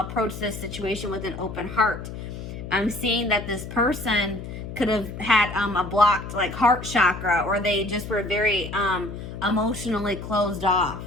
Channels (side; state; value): left; noise; hum, 9 dB below the sound